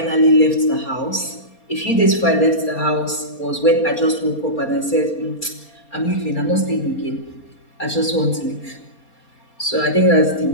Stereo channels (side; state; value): right; late; 4.3 ms